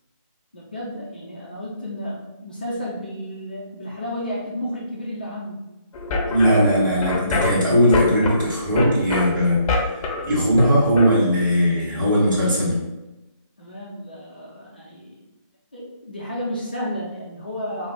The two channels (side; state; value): both; inverted; correlation -0.68